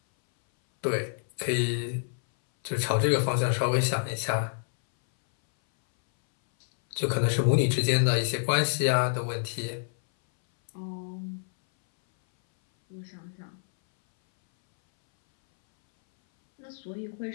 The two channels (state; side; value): silent; right; 60 dB below the other